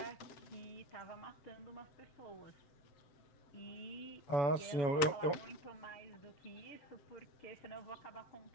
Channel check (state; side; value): late; right; 7.1 ms